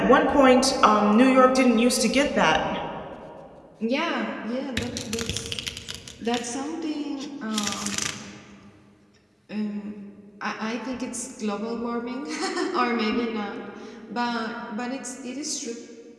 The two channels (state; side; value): identical; both; correlation 1.00